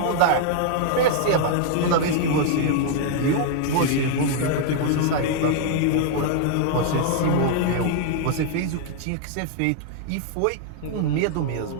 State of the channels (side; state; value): both; different; correlation 0.00